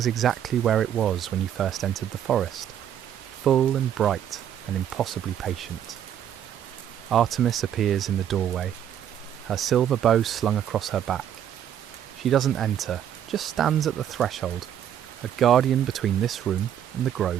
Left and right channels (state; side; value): quieter; left; 10.0 dB